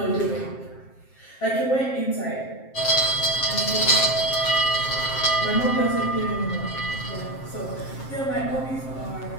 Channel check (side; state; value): right; late; 7.5 ms